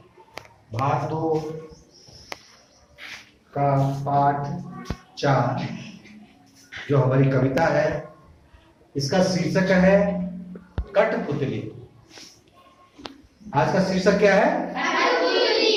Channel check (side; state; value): both; identical; correlation 1.00